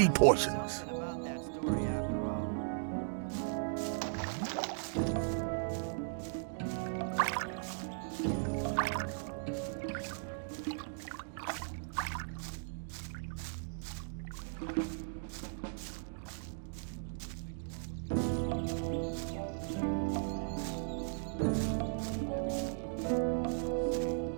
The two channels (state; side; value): silent; left; digital silence